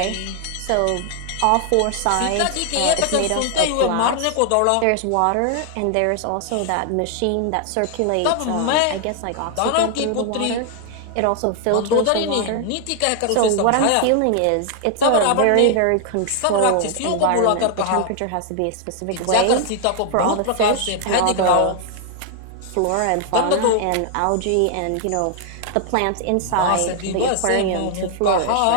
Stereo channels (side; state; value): both; different; correlation 0.00